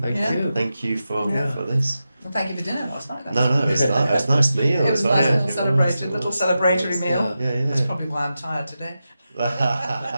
thank Yeah. you. Thank you for Yeah. this. well, thank you for dinner last night. No, it's nice meal. It was a nice little celebratory meal. Yeah, That's probably why I'm tired today.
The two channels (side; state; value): both; inverted; correlation -0.91